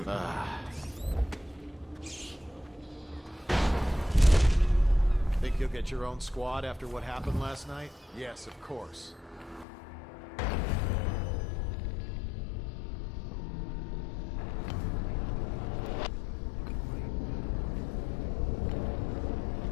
Think you'll get your own squad after what happened last night? Yes, of course.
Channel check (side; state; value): right; drops out; at 9.7 s